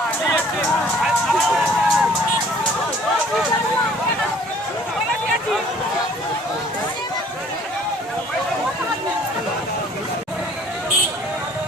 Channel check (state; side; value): normal; both; correlation 0.54